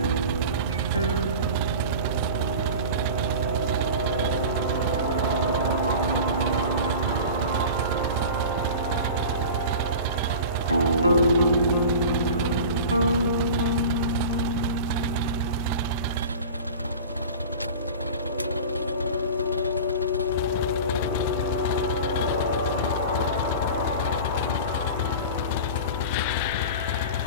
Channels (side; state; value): both; inverted; correlation -0.34